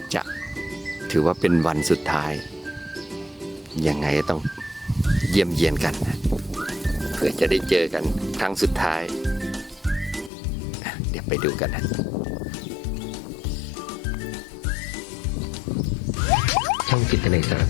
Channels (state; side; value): drops out; right; at 10.3 s